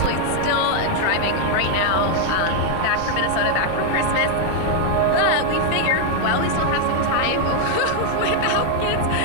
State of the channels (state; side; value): different; both; correlation 0.01